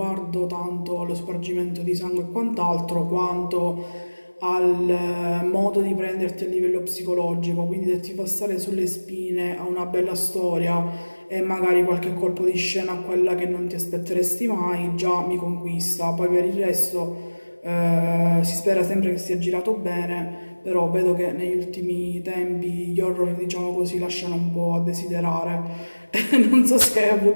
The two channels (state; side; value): inverted; both; correlation -1.00